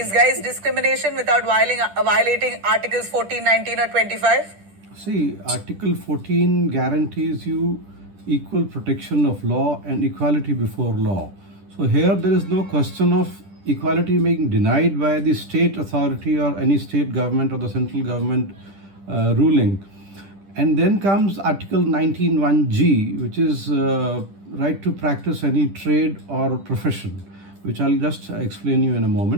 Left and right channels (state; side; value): late; left; 10 ms